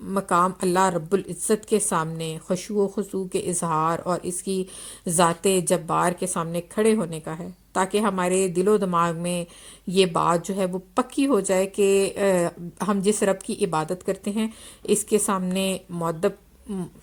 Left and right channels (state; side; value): identical; both; correlation 1.00